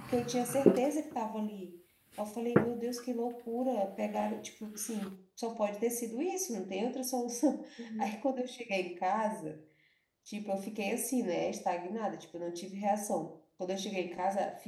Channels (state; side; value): identical; both; correlation 1.00